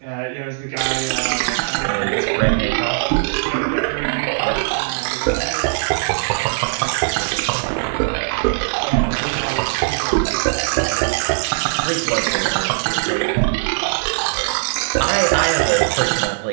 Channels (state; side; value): silent; left; digital silence